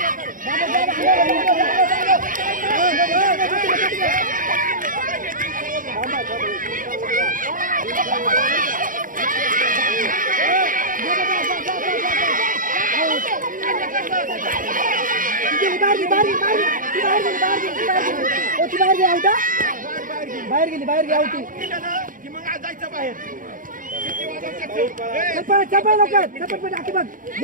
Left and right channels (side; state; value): left; late; 0.39 ms